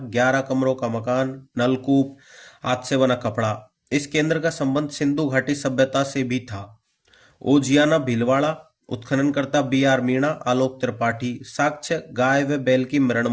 11 कमरों का मकान, नलकूप, हाथ से बना कपड़ा। इस केंद्र का संबंध सिंधु घाटी सभ्यता से भी था। ओजियाना भीलवाड़ा, उत्खननकर्ता बी.आर. मीणा, आलोक त्रिपाठी। साक्ष्य: गाय व बैल की मरण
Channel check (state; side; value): identical; both; correlation 1.00